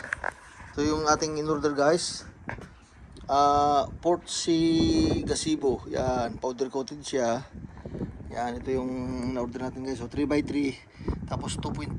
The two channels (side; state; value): both; identical; correlation 1.00